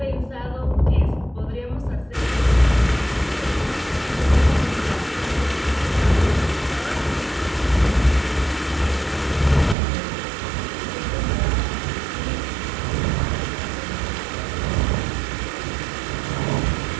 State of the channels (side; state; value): left; drops out; at 9.8 s